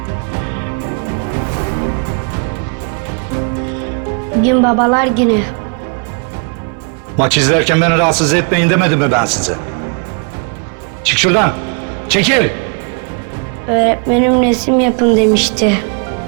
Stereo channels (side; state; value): left; quieter; 39.8 dB